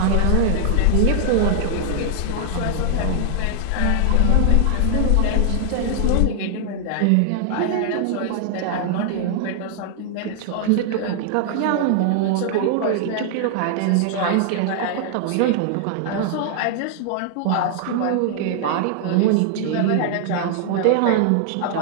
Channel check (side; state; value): both; different; correlation -0.01